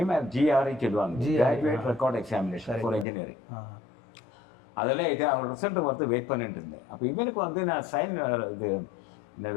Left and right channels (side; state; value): right; drops out; at 3.1 s